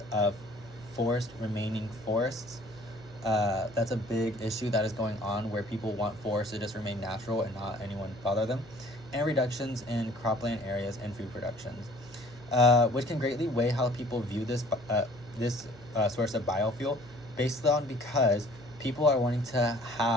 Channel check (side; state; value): right; noise; hum, 22 dB below the sound